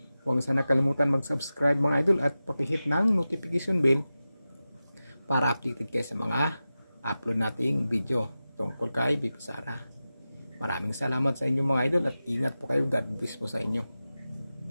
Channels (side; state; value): both; inverted; correlation -0.94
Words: huwag sana kalimutan mag-subscribe mga idol at pakihit ng notification bell para updated kayo sa mga upload nating video tungkol kay BP Sara. Maraming salamat sa inyo mga idol at ingat po kayo. God bless po sa inyo.